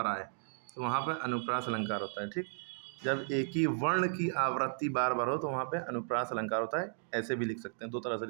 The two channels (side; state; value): left; silent; digital silence